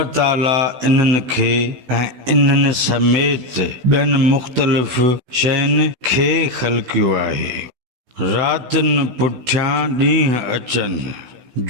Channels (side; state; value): left; late; 16 ms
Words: ताला इन्हनि खे ऐं इन्हनि समेत ॿियनि मुख़्तलिफ़ शयुनि खे ख़ल्क़ियो आहे। रातिनि पुठियां ॾींहं अचनि,